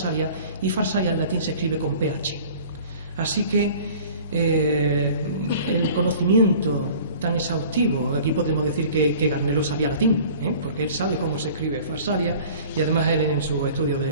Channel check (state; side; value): inverted; both; correlation -0.46